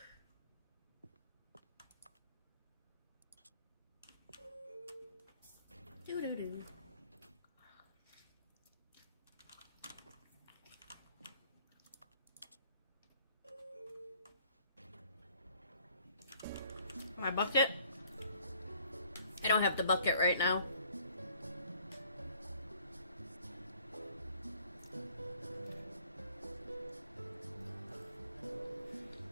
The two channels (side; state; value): both; inverted; correlation -0.58